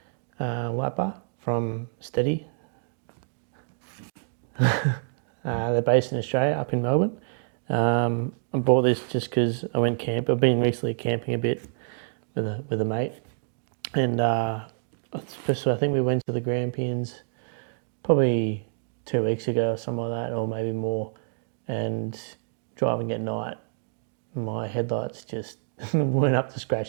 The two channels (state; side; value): silent; left; digital silence